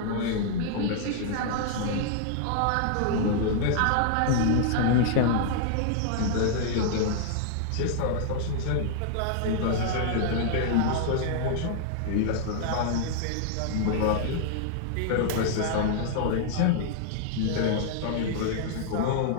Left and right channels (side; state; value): both; different; correlation -0.01